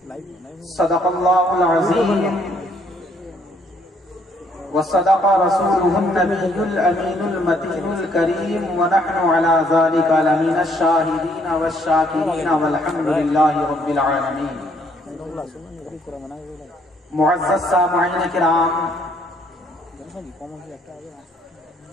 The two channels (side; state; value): both; normal; correlation 0.67